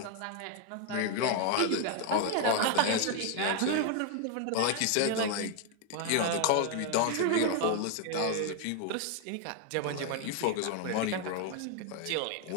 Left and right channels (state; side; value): different; both; correlation 0.00